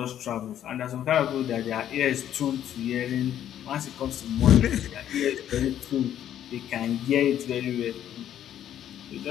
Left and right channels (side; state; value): right; quieter; 10.8 dB